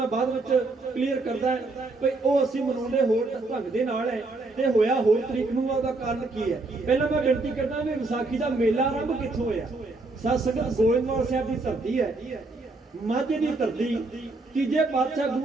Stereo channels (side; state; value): left; quieter; 3.3 dB